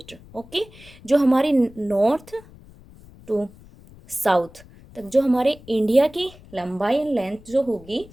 ओके, जो हमारी नॉर्थ टू साउथ तक जो हमारे इंडिया की लंबाई एंड लेंथ जो होगी,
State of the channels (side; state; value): left; noise; rumble, 22 dB below the sound